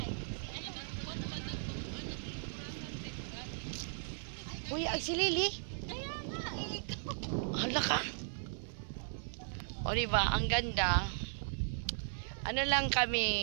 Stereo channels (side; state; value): left; silent; 53 dB below the other